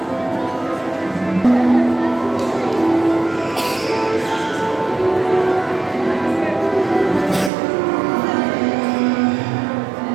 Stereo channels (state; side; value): drops out; left; at 7.5 s